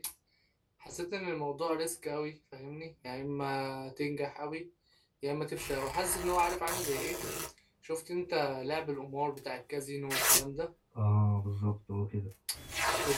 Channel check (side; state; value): both; identical; correlation 1.00